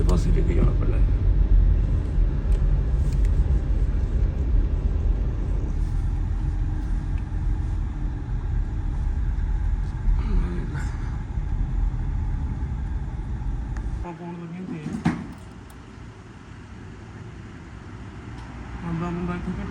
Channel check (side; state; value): both; identical; correlation 1.00